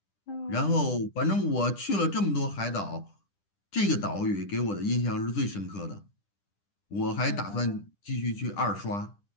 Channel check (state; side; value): late; right; 10 ms